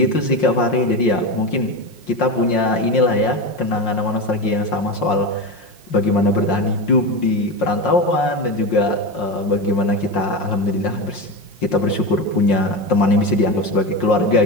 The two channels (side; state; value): right; late; 5.6 ms